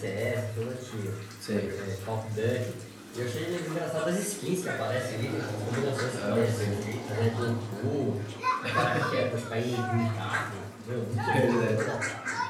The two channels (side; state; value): both; identical; correlation 1.00